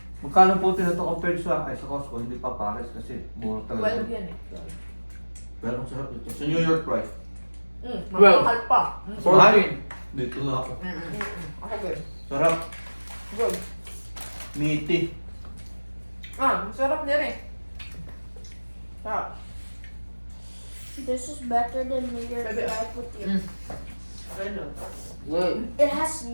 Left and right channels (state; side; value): inverted; both; correlation -1.00